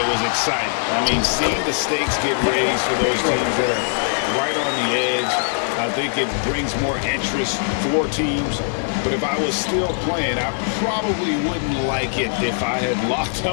was exciting. I mean, seeing the stakes get raised for those teams that are right on the edge, I think it brings more interest for teams. But if I was still playing, I probably wouldn't like it if I had locked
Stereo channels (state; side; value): silent; right; digital silence